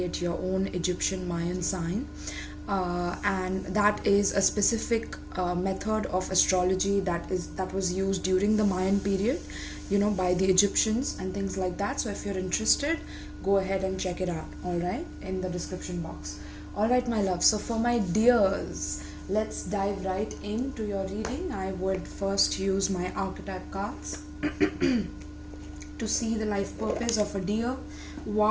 your own Egyptian Mayan sign. And that is a specific method of astrology that was used during the Mayan period, by the Egyptians and things like that. So if you're interested, go ahead and check it out, all right, in the description box. All right, my love. So for my dears, let's dive right into your reading. I would first use my archetype cards to see the life purpose of a deer.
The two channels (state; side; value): identical; both; correlation 1.00